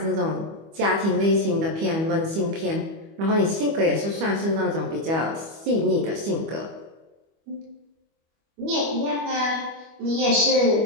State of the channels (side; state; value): left; late; 25 ms